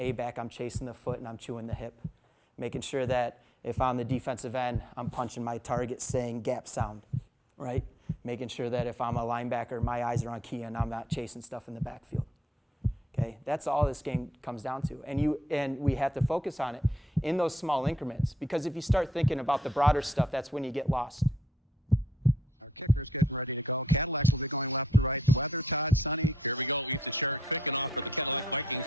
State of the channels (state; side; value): normal; both; correlation 0.69